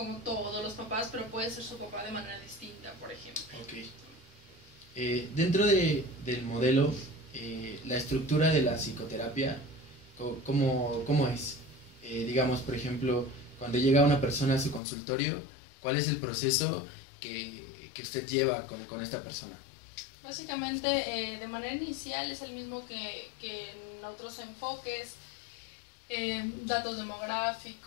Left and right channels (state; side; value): drops out; right; at 14.8 s